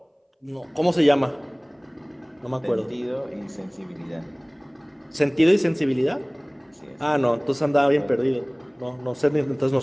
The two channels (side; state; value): both; identical; correlation 1.00